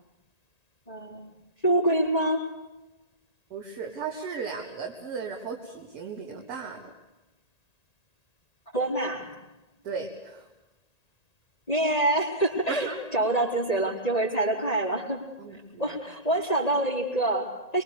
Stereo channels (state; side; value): late; right; 1.9 ms